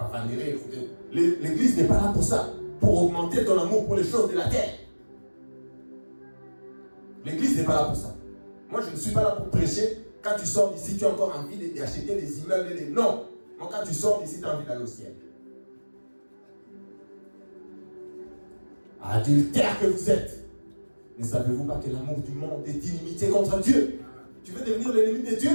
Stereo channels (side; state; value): both; inverted; correlation -1.00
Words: L'église n'est pas là pour ça, pour augmenter ton amour pour les choses de la terre. L'église n'est pas là pour ça. Moi, je ne suis pas là pour prêcher. Quand tu sors d'ici, tu as encore envie d'acheter des immeubles et des... Non. Moi, quand tu sors d'ici, tu as envie d'aller au ciel. Adultère que vous êtes. Ne savez-vous pas que l'amour du monde est inimitié contre Dieu? Tu veux devenir l'ennemi de Dieu?